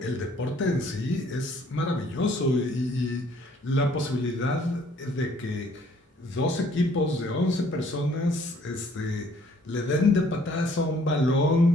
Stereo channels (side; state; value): both; normal; correlation 0.61